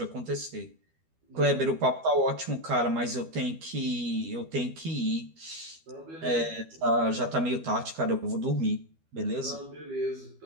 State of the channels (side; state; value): left; late; 12 ms